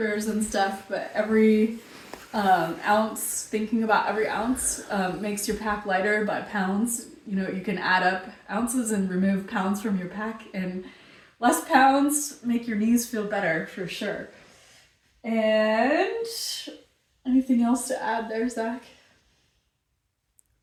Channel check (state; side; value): identical; both; correlation 1.00